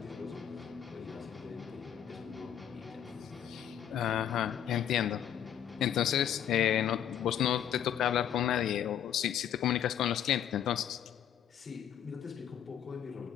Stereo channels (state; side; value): quieter; right; 9.7 dB